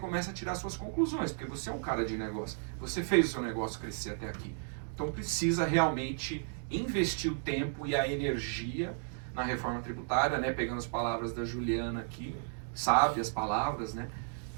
a tirar suas conclusões, porque você é um cara de negócio, você fez o seu negócio crescer até aqui. Então precisa realmente investir o tempo e a energia na reforma tributária, né? Pegando as palavras da Juliana aqui, sabe as palavras, né?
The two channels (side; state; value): left; silent; digital silence